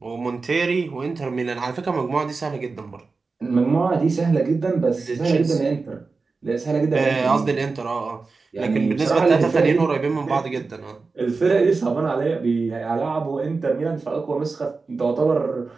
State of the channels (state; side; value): quieter; left; 4.2 dB